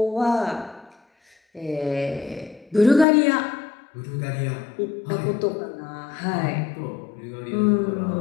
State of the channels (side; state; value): right; drops out; at 3.1 s